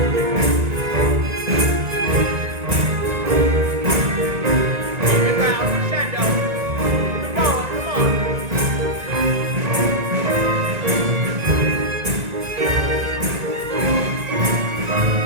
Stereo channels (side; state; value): left; late; 1.9 ms